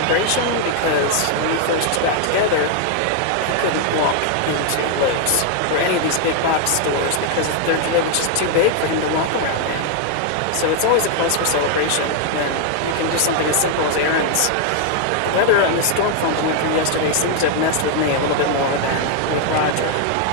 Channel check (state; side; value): different; both; correlation 0.00